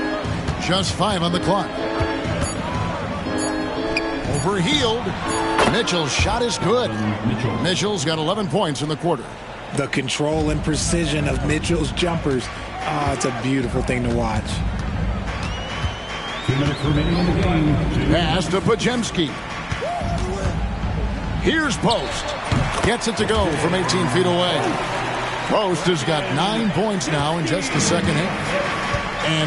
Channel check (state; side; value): identical; both; correlation 1.00